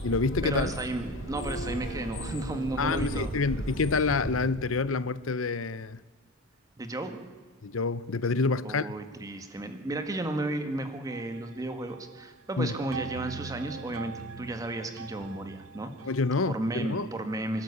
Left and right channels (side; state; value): both; normal; correlation 0.33